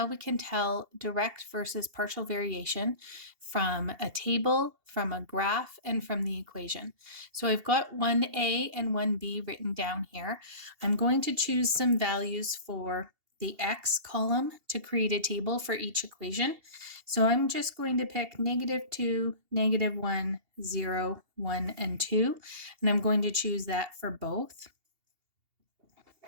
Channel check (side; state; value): left; late; 2.8 ms